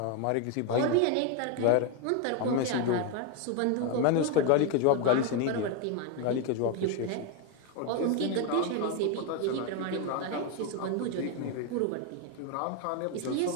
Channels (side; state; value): both; different; correlation 0.02